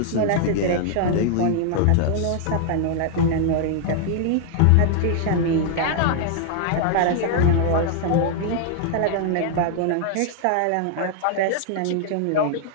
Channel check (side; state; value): both; different; correlation -0.01